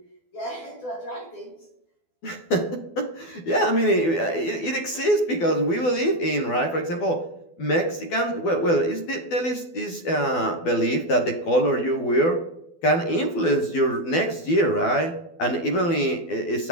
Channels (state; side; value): late; right; 12 ms